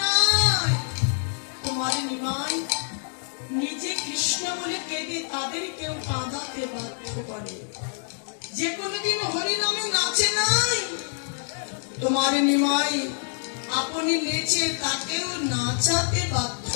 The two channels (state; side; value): silent; right; digital silence